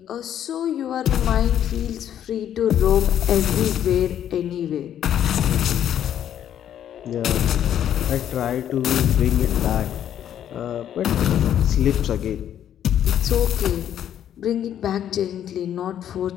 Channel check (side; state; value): right; quieter; 10.3 dB